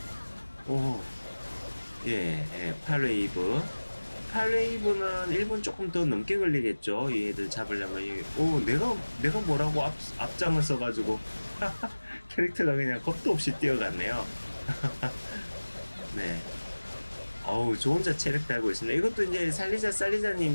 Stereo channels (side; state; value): both; inverted; correlation -1.00